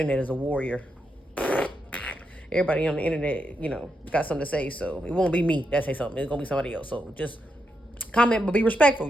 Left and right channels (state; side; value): normal; both; correlation 0.83